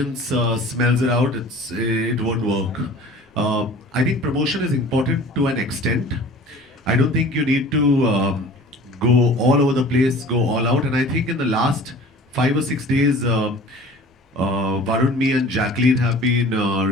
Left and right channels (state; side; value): normal; both; correlation 0.44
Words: smells it out, it won't work. I think promotion is important to an extent. I don't think you need to go all over the place, go all out. And I think in the last 5 or 6 days, Varun, me, and Jacqueline have been